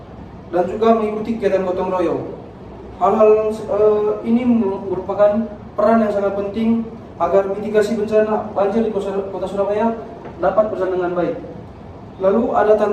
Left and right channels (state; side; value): identical; both; correlation 1.00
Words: dan juga mengikuti kegiatan gotong royong. Hal-hal ini merupakan peran yang sangat penting agar mitigasi bencana banjir di Kota Surabaya dapat berjalan dengan baik. Lalu ada